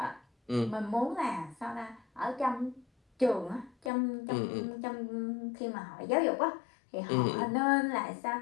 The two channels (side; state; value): right; drops out; at 3.9 s